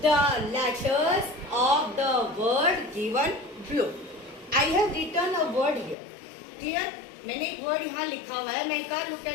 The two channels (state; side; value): drops out; right; at 6.0 s